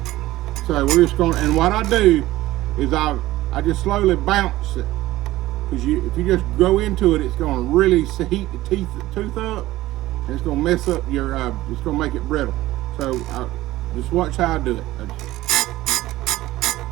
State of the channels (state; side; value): quieter; left; 16.5 dB